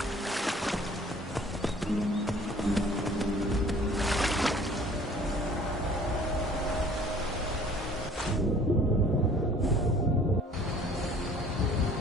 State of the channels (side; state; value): both; normal; correlation 0.52